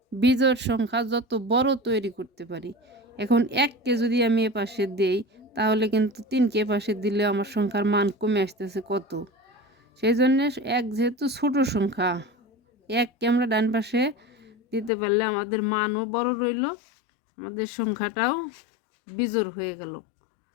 বিজোড় সংখ্যা যত বড় তৈরি করতে পারি। এখন 1কে যদি আমি এ পাশে দেই তাহলে কিন্তু 3কে পাশে দিলে আমার সংখ্যার মান কমে আসতেছে কত। সেই জন্য 1 যেহেতু ছোট সংখ্যা, 1কে আমরা ডান পাশে দিতে পারলে আমাদের মানও বড় রইল, আমাদের সংখ্যাটাও বিজোড় হয়ে গেল।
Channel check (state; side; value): drops out; right; at 14.9 s